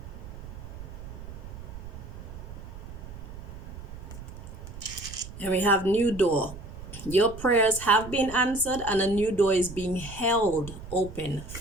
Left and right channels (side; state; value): right; noise; rumble, 12 dB below the sound